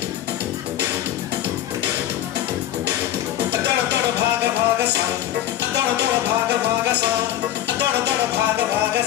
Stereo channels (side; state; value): right; quieter; 12.4 dB